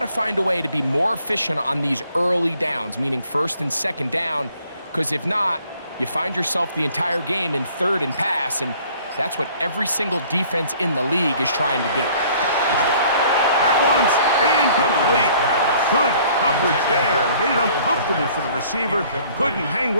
find a way to be more efficient on these early downs, meaning 1st and 2nd down, because if not, you find yourself the entire game in 3rd and pass, and that's what every single defense in the league is trying to do. That one's incomplete. Good coverage there. Made it uncomfortable for the receiver. Couldn't hang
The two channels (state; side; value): inverted; both; correlation -0.56